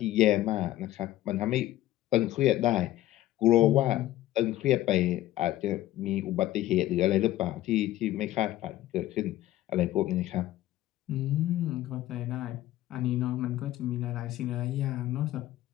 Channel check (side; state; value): right; quieter; 14.8 dB